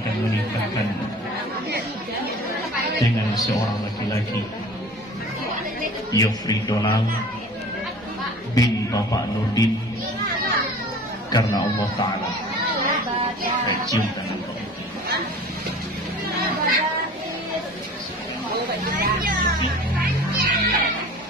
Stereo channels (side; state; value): both; normal; correlation 0.43